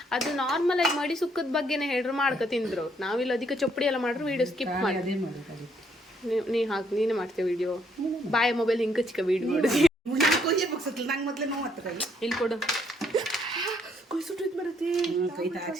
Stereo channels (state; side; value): normal; both; correlation 0.70